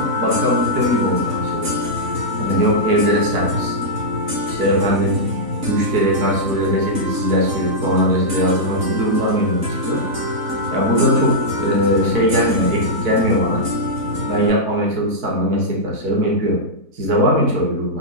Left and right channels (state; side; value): late; left; 3.9 ms